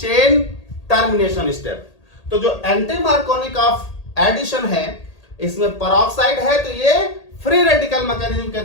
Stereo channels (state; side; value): late; right; 1.8 ms